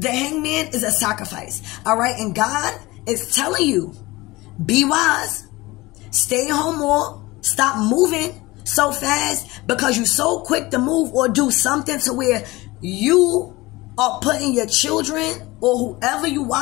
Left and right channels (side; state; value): right; quieter; 20.8 dB